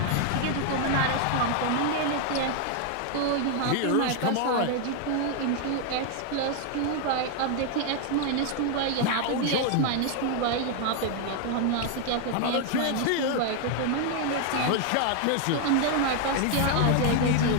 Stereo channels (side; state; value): both; different; correlation 0.00